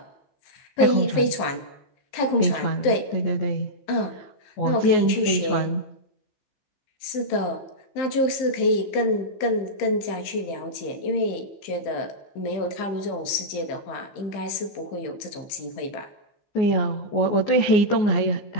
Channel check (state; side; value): late; right; 15 ms